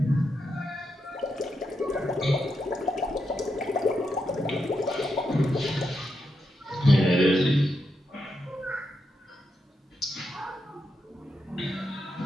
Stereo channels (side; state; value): both; normal; correlation 0.84